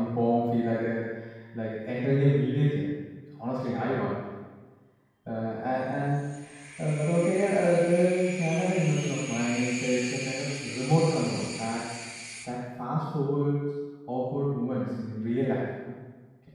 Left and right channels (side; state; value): both; identical; correlation 1.00